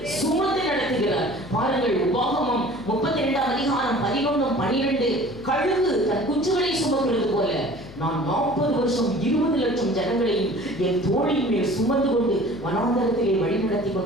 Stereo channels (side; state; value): left; noise; hum, 16 dB below the sound